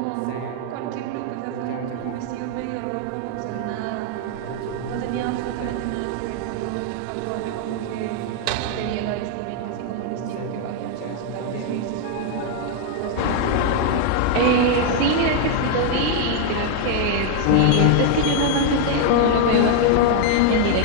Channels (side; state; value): both; different; correlation 0.00